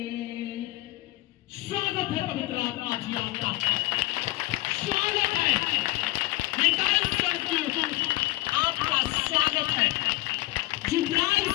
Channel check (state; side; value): quieter; right; 19.3 dB